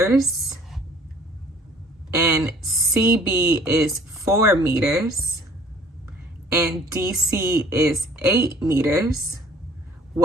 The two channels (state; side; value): normal; both; correlation 0.53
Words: and CB is 4 meters, and DC is 8 meters,